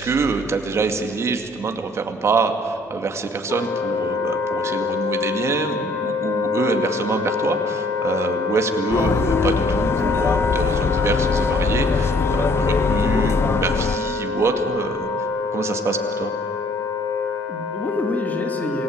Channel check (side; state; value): both; normal; correlation 0.59